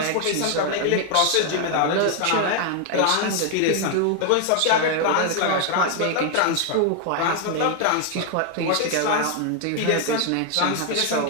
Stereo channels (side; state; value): both; different; correlation 0.01